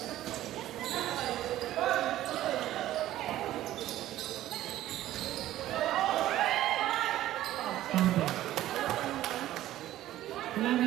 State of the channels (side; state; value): left; quieter; 14.0 dB